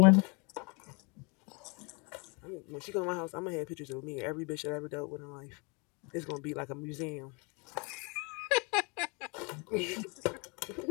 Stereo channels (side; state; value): right; quieter; 30.9 dB